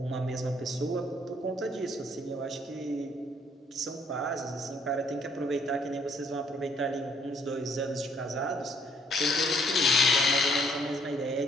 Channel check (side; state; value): both; normal; correlation 0.65